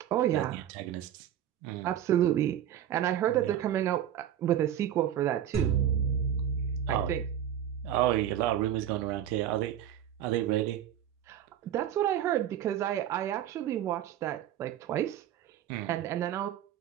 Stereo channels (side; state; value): left; quieter; 10.6 dB